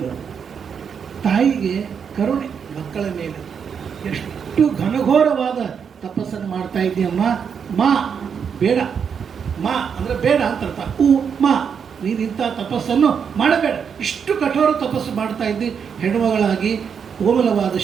ತಾಯಿಗೆ ಕರುಣೆ ಮಕ್ಕಳ ಮೇಲೆ. ಎಷ್ಟು ಘನಘೋರವಾದ ತಪಸ್ಸನ್ನು ಮಾಡ್ತಾ ಇದ್ದೀಯಮ್ಮ, ಮಾ ಬೇಡ, ಮಾ ಅಂದರೆ ಬೇಡ ಅಂತ ಅರ್ಥ. ಮಾ ನೀನು ಇಂಥ ತಪಸ್ಸನ್ನು ಮಾಡಬೇಡ, ಇಷ್ಟು ಕಠೋರ ತಪಸ್ಸು ಮಾಡ್ತಾ ಇದ್ದಿ, ಹೆಣ್ಣುಮಗಳಾಗಿ ಕೋಮಲವಾದ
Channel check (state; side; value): quieter; left; 7.0 dB